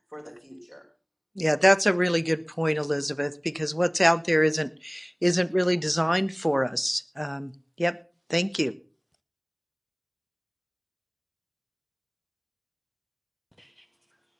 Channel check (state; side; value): identical; both; correlation 1.00